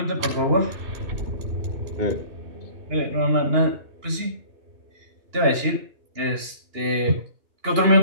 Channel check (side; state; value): left; late; 2.8 ms